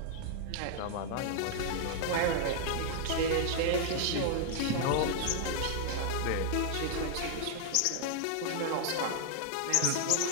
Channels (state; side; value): different; both; correlation 0.00